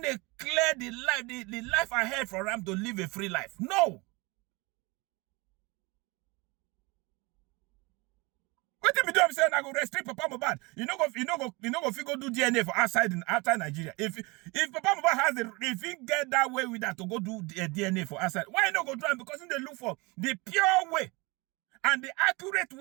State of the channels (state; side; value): quieter; left; 25.9 dB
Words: clear the life ahead for him to live a free life. No. What if you do? I'm saying I go restrict Papa Mohbad. You know go figure do DNA for outside Nigeria. If Papa Mohbad has if he get that way with that to go do DNA for outside, why not go do it? Because they look for the pure way and the accurate